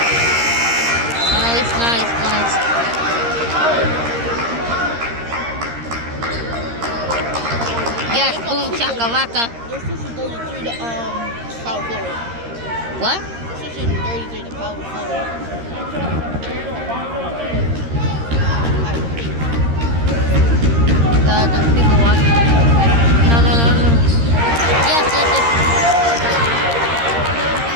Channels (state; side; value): late; left; 13 ms